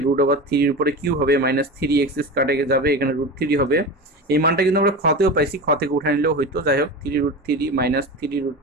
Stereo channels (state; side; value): normal; both; correlation 0.27